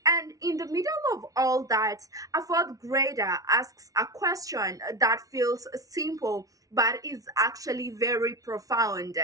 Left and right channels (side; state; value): left; late; 0.18 ms